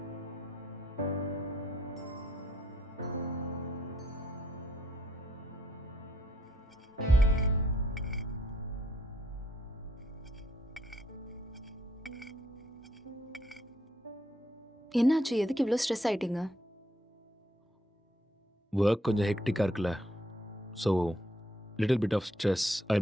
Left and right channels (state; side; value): normal; both; correlation 0.71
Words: என்னாச்சு? எதுக்கு இவ்வளோ stress ஆயிட்டீங்க? Work கொஞ்சம் ஹெக்டிக்காக இருக்குல்ல, so little bit of stress.